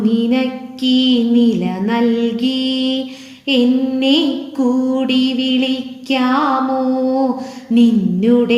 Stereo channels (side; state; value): both; identical; correlation 1.00